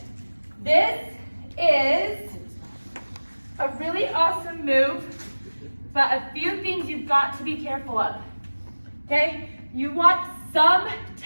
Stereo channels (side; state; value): both; inverted; correlation -1.00